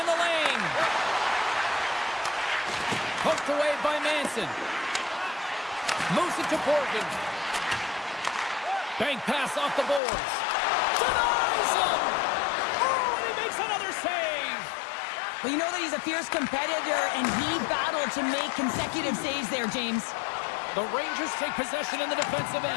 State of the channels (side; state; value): right; drops out; at 10.0 s